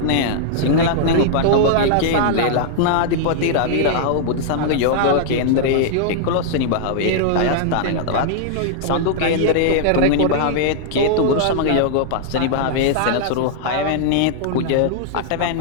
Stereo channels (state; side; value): different; both; correlation -0.01